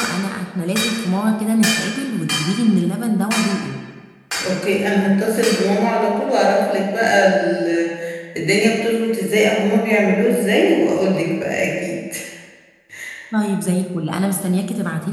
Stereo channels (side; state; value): both; identical; correlation 1.00